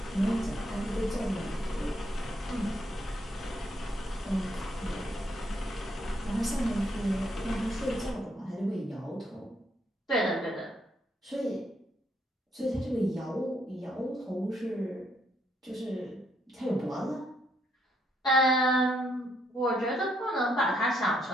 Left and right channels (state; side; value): normal; both; correlation 0.74